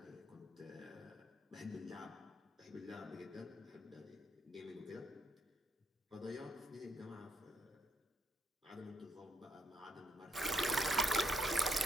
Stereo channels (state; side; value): normal; both; correlation 0.75